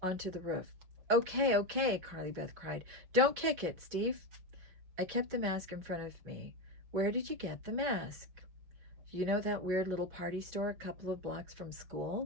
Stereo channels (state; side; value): late; left; 5.4 ms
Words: onto the roof. Okay, okay, Carly Beth cried. Don't kick it, Steve. I kept the mask in front of me. Where did you get the mask? You know that weird little party store a couple of blocks from